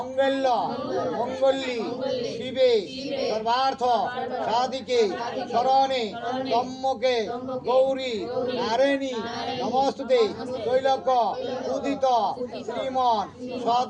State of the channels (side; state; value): both; identical; correlation 1.00